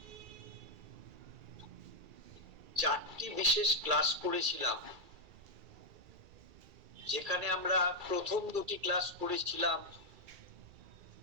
4টি বিশেষ ক্লাস করেছিলাম, যেখানে আমরা প্রথম 2টি ক্লাস করেছিলাম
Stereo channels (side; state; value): left; late; 2.3 ms